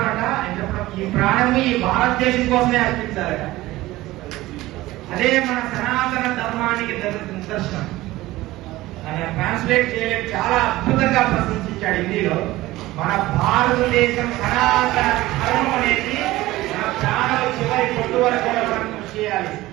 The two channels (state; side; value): quieter; left; 17.7 dB